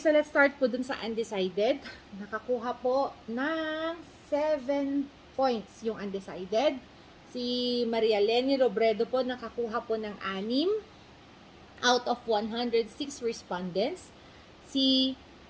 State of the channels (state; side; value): identical; both; correlation 1.00